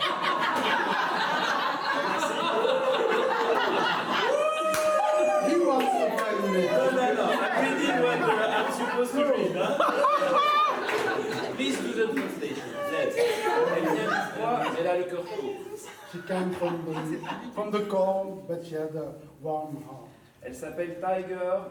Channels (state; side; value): identical; both; correlation 1.00